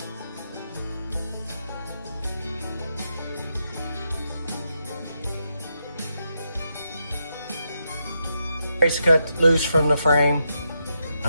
Brace cut loose from the frame.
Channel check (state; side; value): inverted; both; correlation -0.83